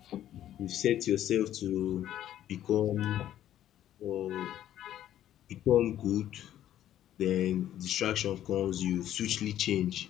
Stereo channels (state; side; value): quieter; right; 11.9 dB